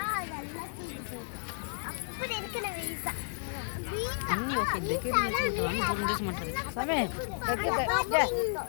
நல்லா தீர்ந்து அப்படி இருக்கு. நம்ம ஈசா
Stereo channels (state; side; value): silent; right; digital silence